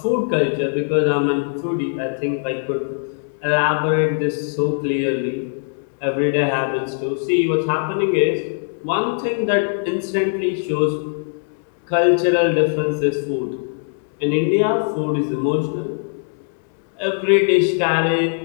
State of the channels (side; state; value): right; silent; digital silence